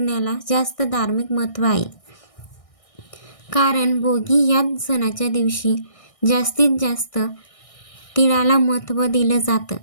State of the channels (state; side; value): late; right; 1.6 ms